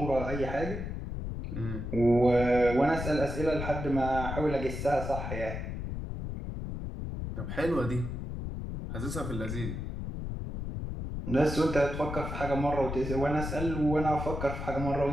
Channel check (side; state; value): left; noise; rumble, 5 dB below the sound